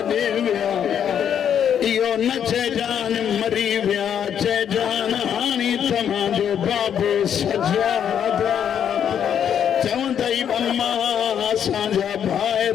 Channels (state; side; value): quieter; right; 8.8 dB